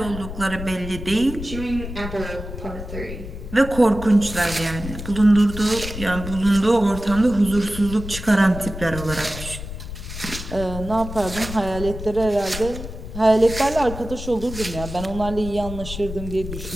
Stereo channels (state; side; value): noise; left; rumble, 9 dB below the sound